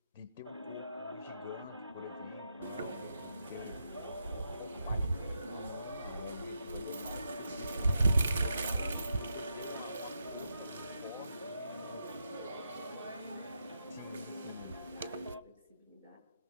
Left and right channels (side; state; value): both; inverted; correlation -0.83